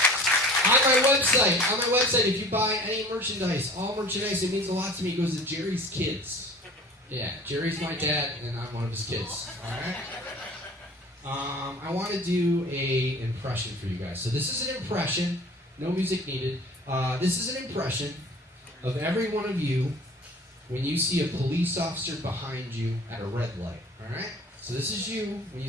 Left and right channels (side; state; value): both; normal; correlation 0.45